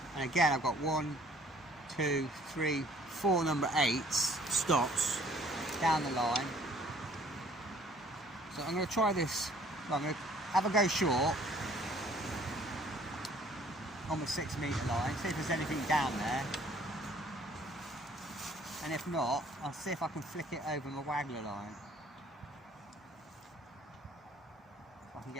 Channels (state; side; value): normal; both; correlation 0.57